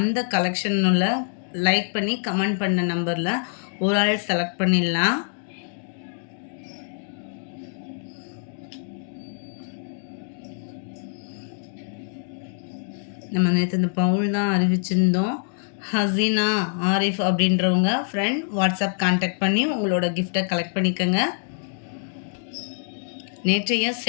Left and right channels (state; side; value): silent; right; digital silence